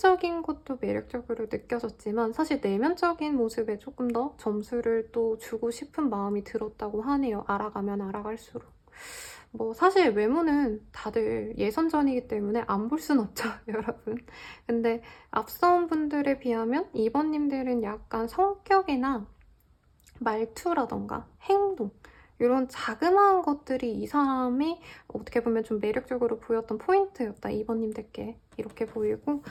것도 매력적으로 느껴졌지만 사실 내면적인 모습에 조금 더 점수를 또 주고 싶은 마음이 들었다고 하네요. 알아가면 알아갈수록. 뭐 사실 외모는 다들 예선전이기 때문에 안 볼 순 없죠, 여러분. 근데 앞선 분들에 비하면 2번님들은 약간 성격이나 말투라던가 행동 이런 자그마한 것들이 이 사람이 어떻게 보면 좀 매력적으로 보였던 포인트였다, 2번님들께. 이렇게 보이고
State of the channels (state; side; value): identical; both; correlation 1.00